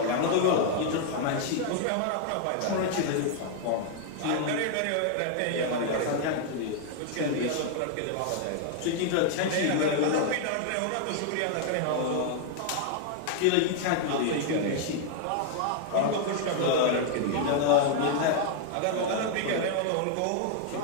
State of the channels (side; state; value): both; different; correlation 0.00